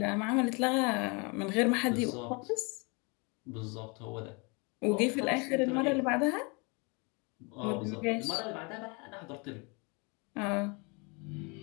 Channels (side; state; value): right; quieter; 30.9 dB